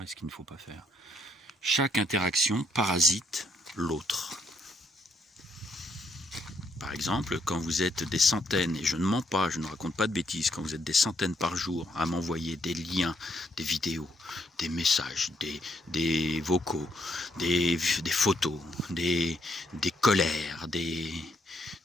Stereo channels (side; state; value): both; normal; correlation 0.73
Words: et ce qu'il ne faut pas faire. Chaque interaction parasite l'autre. Par exemple, quand vous êtes des centaines, et je ne mens pas, je ne raconte pas de bêtises, quand vous êtes des centaines par jour à m'envoyer des liens, des vidéos, des messages, des vocaux, des photos, des colères, des